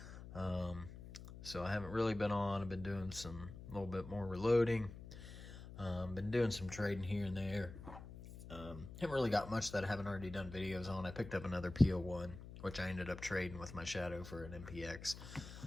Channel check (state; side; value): noise; left; hum, 13 dB below the sound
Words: So I haven't really been on. I've been doing a little bit more reloading. Been doing some trading here and there. Haven't really got much that I haven't already done videos on. I picked up another PO1, which I ended up trading with my Shadow for an MPX.